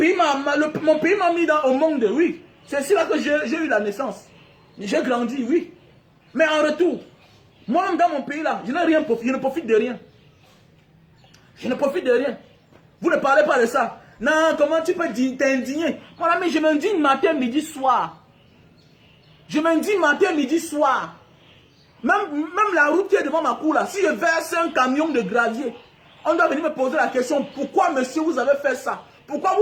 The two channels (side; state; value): both; identical; correlation 1.00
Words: m'a mis au monde, oui. C'est là que j'ai eu la naissance. J'ai grandi, oui. Mais en retour, moi-même dans mon pays là, je n'ai rien profité, je ne profite de rien. Je ne profite de rien. Vous ne parlez pas de ça. Non, comment tu peux t'indigner? Mon ami, je m'indigne matin, midi, soir. Je m'indigne matin, midi, soir. Même la route qui est devant ma cour là, si je verse un camion de gravier, on doit venir me poser la question, pourquoi monsieur vous avez fait ça? Pourquoi